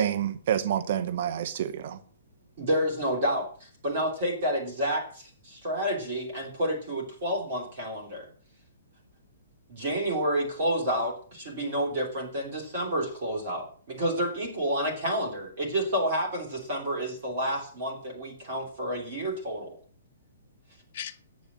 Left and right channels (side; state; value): both; inverted; correlation -0.50